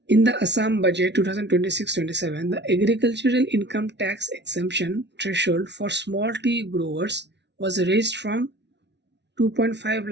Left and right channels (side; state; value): left; late; 0.50 ms